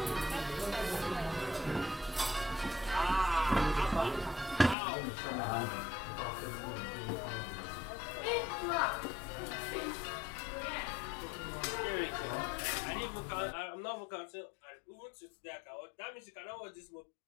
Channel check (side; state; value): right; drops out; at 4.8 s